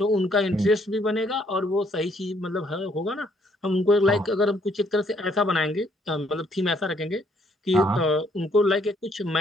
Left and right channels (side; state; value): both; normal; correlation 0.68